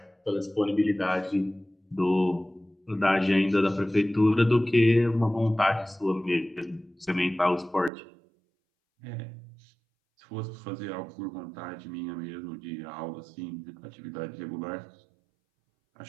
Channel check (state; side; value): drops out; left; at 7.9 s